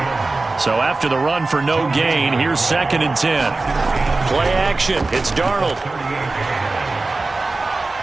So after the run for no gain, here's 2nd and 10. Play action. It's Darnold.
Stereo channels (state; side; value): quieter; left; 3.4 dB